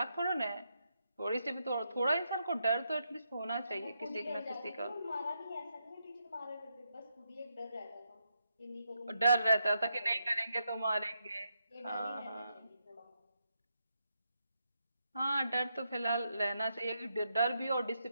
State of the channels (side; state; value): both; inverted; correlation -0.82